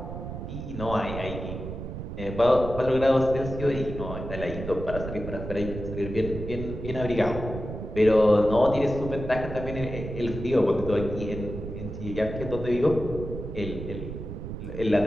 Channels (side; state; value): right; noise; rumble, 8 dB below the sound